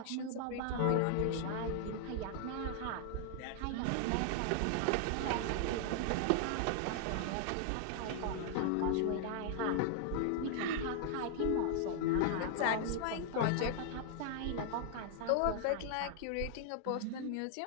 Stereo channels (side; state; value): both; different; correlation 0.00